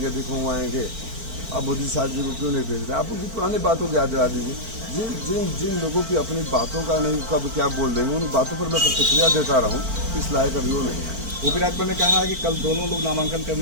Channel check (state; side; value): late; left; 4.5 ms